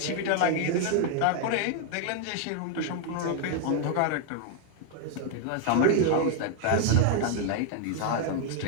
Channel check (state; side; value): different; both; correlation 0.00